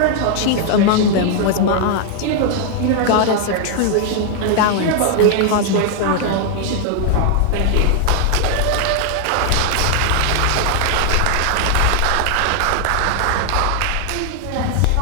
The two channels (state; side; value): different; both; correlation 0.00